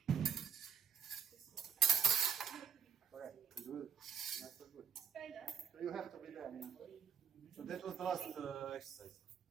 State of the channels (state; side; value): quieter; left; 7.3 dB